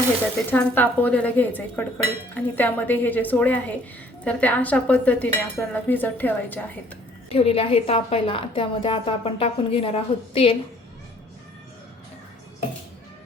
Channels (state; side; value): normal; both; correlation 0.59